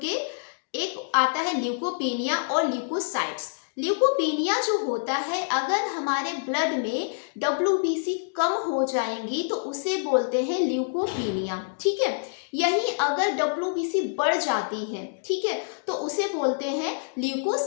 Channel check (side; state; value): right; silent; digital silence